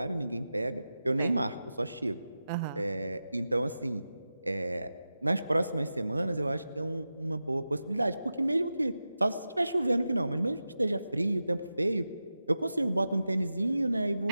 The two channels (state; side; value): inverted; both; correlation -0.92